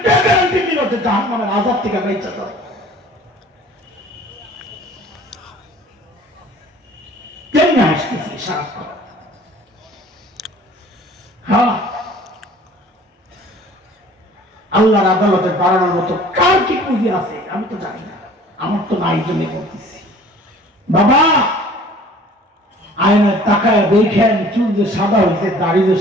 কে গ্যারান্টি দিল যে জাহান্নামের আযাব থেকে বেঁচে যাবে কেমনে আসতেছি সারাক্ষণ হ্যাঁ আল্লাহর আদালতে দাঁড়ানোর মতো কার কি পুঁজি আছে আমি তো জানি না আমার তো নাই জন্য বলতেছি বাবা আয়নায় তাকায় দেখেন চুল যে সাদা হয়েছে দাড়ি যে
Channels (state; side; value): normal; both; correlation 0.50